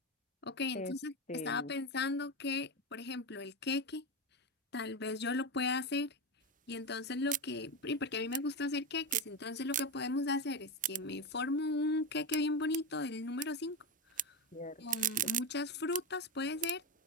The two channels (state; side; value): normal; both; correlation 0.15